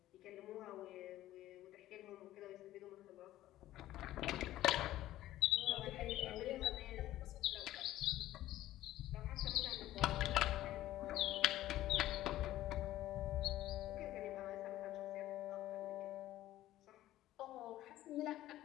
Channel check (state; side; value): quieter; right; 14.5 dB